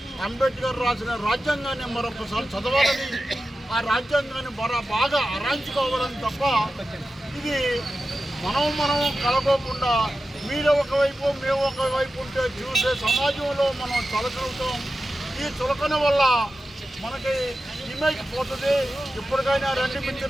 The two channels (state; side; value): normal; both; correlation 0.93